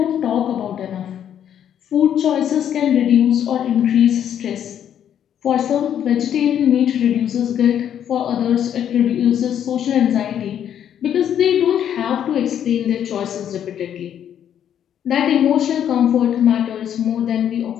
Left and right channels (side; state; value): right; quieter; 9.6 dB